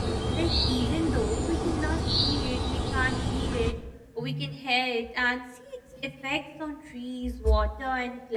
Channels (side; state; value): both; identical; correlation 1.00